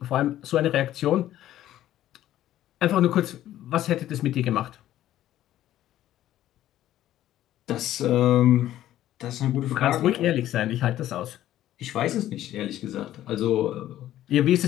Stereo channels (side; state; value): right; quieter; 13.1 dB